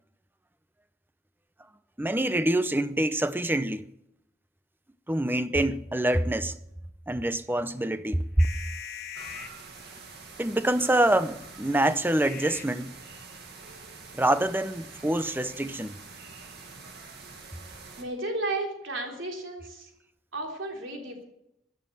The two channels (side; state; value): both; normal; correlation 0.74